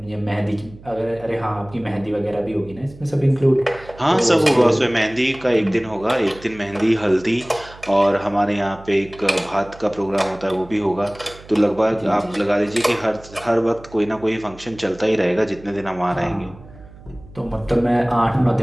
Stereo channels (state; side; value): noise; right; hum, 20 dB below the sound